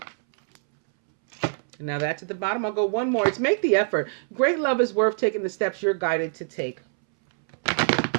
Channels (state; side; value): silent; left; 62 dB below the other